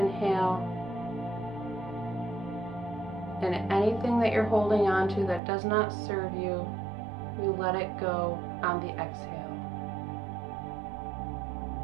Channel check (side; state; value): left; drops out; at 5.4 s